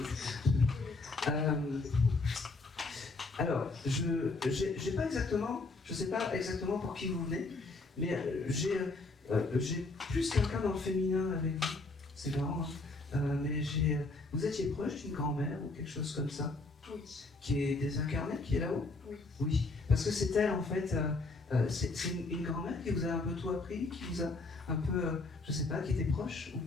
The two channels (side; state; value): right; quieter; 3.4 dB